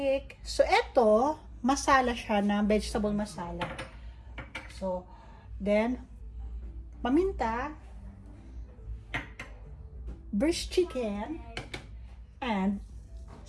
So, eto, masala siya na vegetable masala. So, then, paminta, braised chicken, and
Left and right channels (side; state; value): both; identical; correlation 1.00